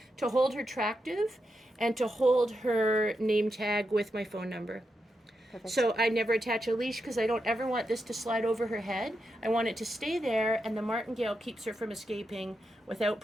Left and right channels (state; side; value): normal; both; correlation 0.86